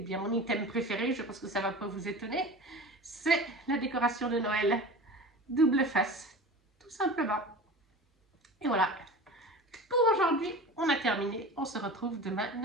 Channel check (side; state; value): both; normal; correlation 0.34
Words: bien mon item préféré, je pense que ça ne va pas vous étonner, c'est la décoration de Noël double face, tout simplement. Et voilà, pour aujourd'hui, on terminé. On se retrouve demain